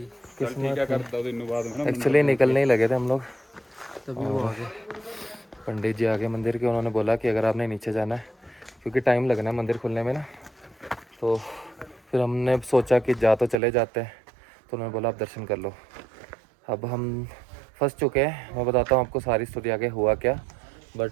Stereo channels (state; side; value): drops out; left; at 13.6 s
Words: एक्चुअली निकलने ही लगे थे हम लोग तभी वो आ गए। पंडित जी आगे मंदिर के, उन्होंने बोला कि अगर आपने नीचे जाना है, क्योंकि टाइम लगना है मंदिर खुलने में ना, तो फिर हमने सोचा कि जा तो चले जाते हैं, तो उन्होंने बोला आप दर्शन कर लो। अब हम फंस चुके हैं, मैं बताता हूँ आपको सारी स्टोरी आगे हुआ क्या।